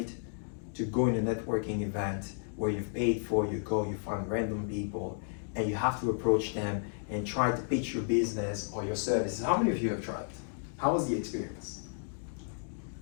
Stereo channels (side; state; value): right; silent; digital silence